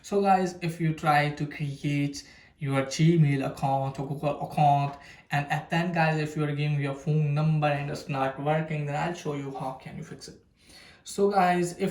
So guys, if you try to create your Gmail account or Google account, and at then guys, if you are giving your phone number and it's not working, then I'll show you how can you fix it. So guys,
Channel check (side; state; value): both; identical; correlation 1.00